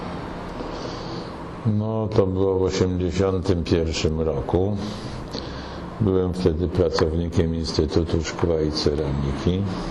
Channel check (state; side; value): identical; both; correlation 1.00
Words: No to było w 1981 roku. Byłem wtedy pracownikiem Instytutu Szkła i Ceramiki.